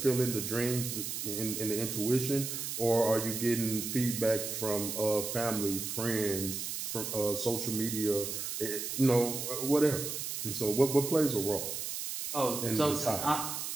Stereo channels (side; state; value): right; noise; hiss, 4 dB below the sound